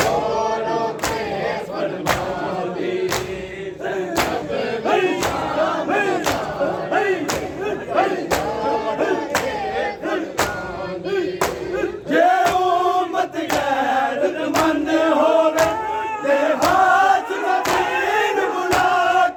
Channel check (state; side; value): identical; both; correlation 1.00